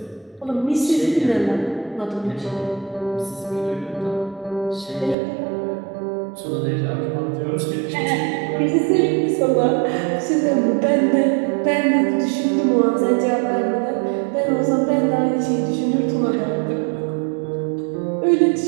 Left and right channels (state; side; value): drops out; left; at 5.2 s